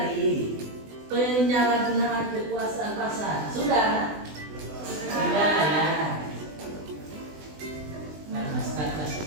penyalahgunaan kekuasaan pasar. Sudah? Sudah ya. Nah,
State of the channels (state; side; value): late; left; 20 ms